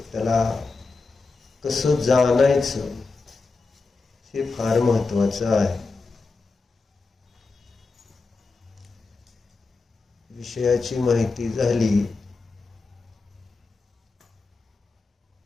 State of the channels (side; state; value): right; quieter; 4.0 dB